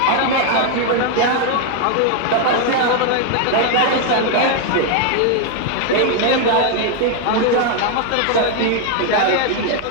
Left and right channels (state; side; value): different; both; correlation 0.00